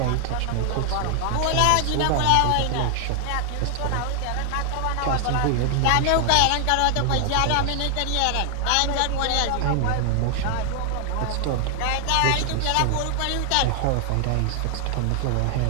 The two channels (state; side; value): different; both; correlation 0.00